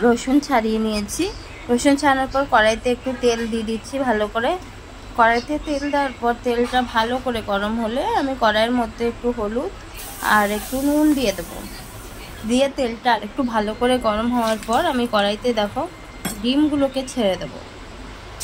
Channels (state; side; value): identical; both; correlation 1.00